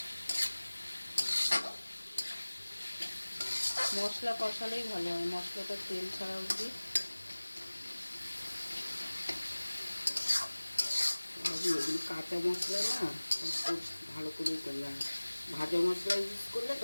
মশলা কষালেই ভালো হয়, মশলাটা তেল ছাড়া অবধি। এগুলো কাঁচা মশলা না, খুব ভালো করে করলাম। ভাজা মশলা ইউজ করলে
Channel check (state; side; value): inverted; both; correlation -1.00